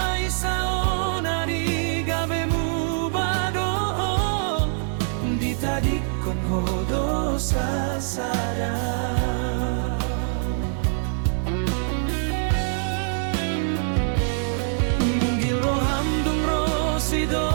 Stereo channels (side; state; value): left; silent; digital silence